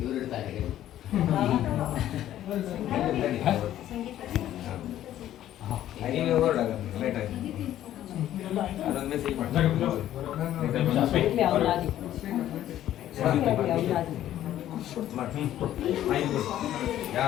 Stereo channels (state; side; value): quieter; right; 12.4 dB